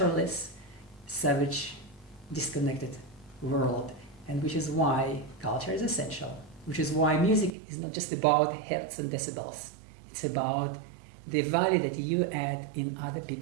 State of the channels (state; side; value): drops out; left; at 7.5 s